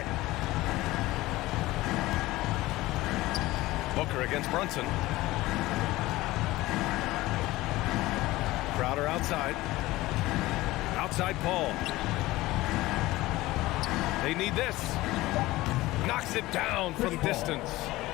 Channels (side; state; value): right; quieter; 18.4 dB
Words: it. Booker against Brunson. Crowder outside. Outside Paul. They need this. Knocks it down from distance.